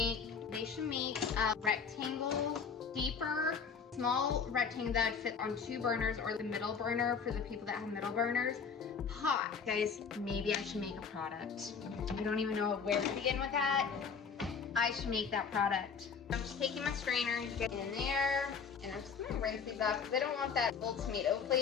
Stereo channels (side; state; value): right; quieter; 6.0 dB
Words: They should make a rectangle, deeper, small rectangle that would fit on 2 burners, or the middle burner for the people that have middle burners. Hot. Guys, maybe I should make a product. I don't even know where to begin with that. I should make that product. I'm just taking my strainer to get in there, and I'm just gonna rinse these off because I don't want that full tomato